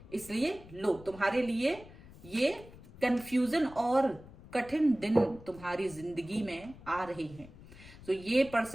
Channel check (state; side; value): noise; left; rumble, 19 dB below the sound